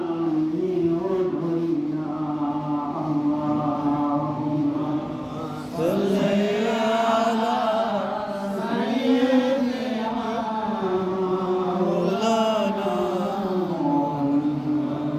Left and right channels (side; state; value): both; identical; correlation 1.00